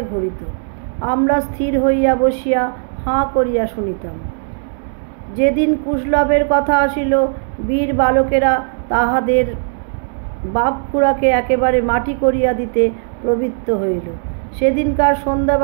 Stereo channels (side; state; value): left; silent; 68 dB below the other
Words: ঘুরিত। আমরা স্থির হইয়া বসিয়া হাঁ করিয়া শুনিতাম। যেদিন কুশলভের কথা আসিল, বীর বালকেরা তাহাদের বাপ-খুড়াকে একেবারে মাটি করিয়া দিতে প্রবৃত্ত হইল। সেদিনকার